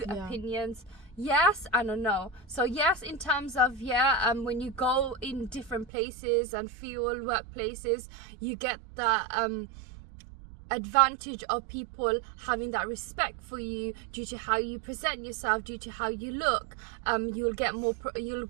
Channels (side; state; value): left; drops out; at 5.9 s